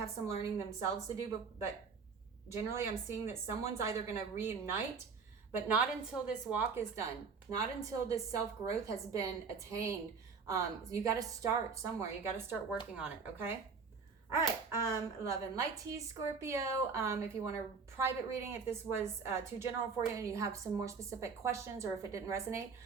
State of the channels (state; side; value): quieter; left; 5.3 dB